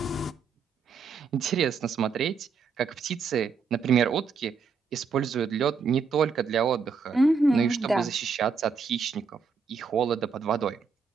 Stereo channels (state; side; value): quieter; left; 5.3 dB